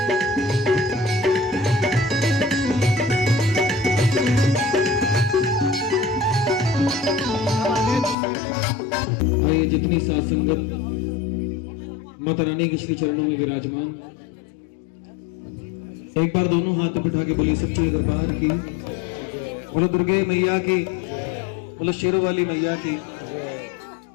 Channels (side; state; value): right; drops out; at 8.2 s